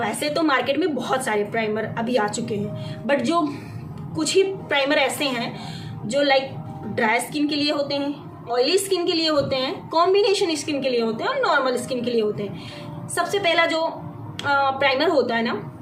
तो मार्केट में बहुत सारे प्राइमर अभी आ चुके हैं, बट जो कुछ ही प्राइमर ऐसे हैं जो लाइक ड्राई स्किन के लिए होते हैं, ऑयली स्किन के लिए होते हैं, कॉम्बिनेशन स्किन के लिए होते हैं और नॉर्मल स्किन के लिए होते हैं। सबसे पहला जो प्राइमर होता है ना,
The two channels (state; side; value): identical; both; correlation 1.00